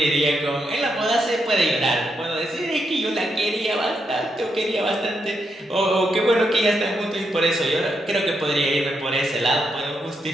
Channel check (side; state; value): both; normal; correlation 0.82